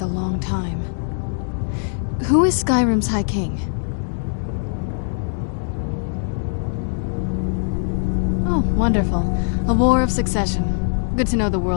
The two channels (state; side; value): silent; right; digital silence